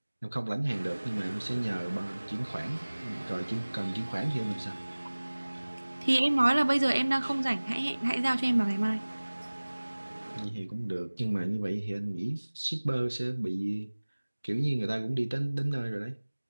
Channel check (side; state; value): both; inverted; correlation -1.00